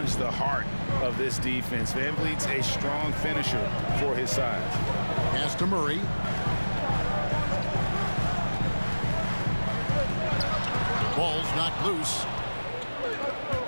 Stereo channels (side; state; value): both; inverted; correlation -1.00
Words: the heart of this defense. VanVleet's a strong finisher for his size. Pass to Murray. Ball's knocked loose.